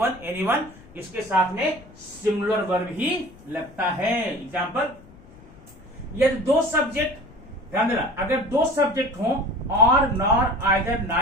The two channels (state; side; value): noise; left; rumble, 23 dB below the sound